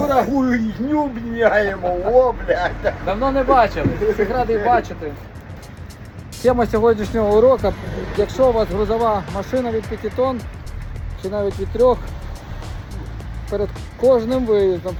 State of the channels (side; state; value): both; identical; correlation 1.00